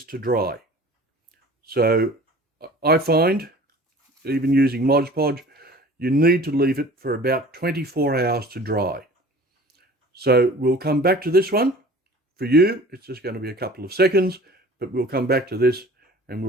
to dry. So I find, even using Mod Podge, you need to leave it for about 24 hours to dry. So we'll come back to this one. For you, it's just going to be a couple of seconds, but we'll come back to this and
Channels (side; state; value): both; normal; correlation 0.45